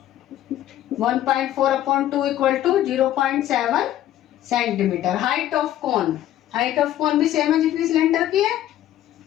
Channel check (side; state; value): right; quieter; 12.7 dB